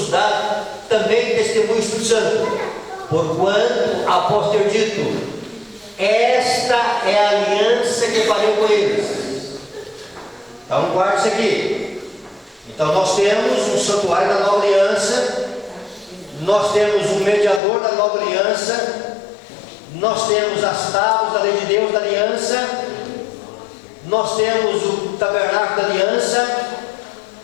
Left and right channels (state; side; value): drops out; right; at 17.6 s